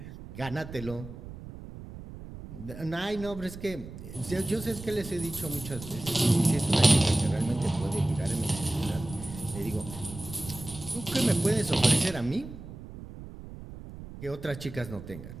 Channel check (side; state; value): right; noise; rumble, 13 dB below the sound